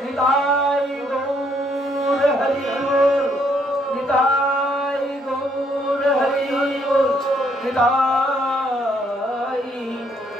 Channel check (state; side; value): normal; both; correlation 0.70